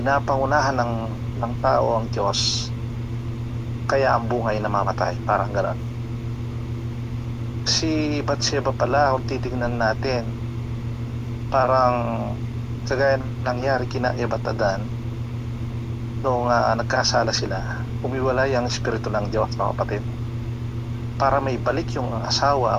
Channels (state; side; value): identical; both; correlation 1.00